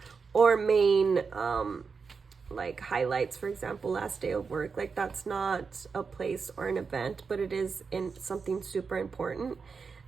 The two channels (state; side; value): quieter; left; 5.2 dB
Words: or main like highlights, for example, last day of work. Like that's not a place or an event, but it is in something super important.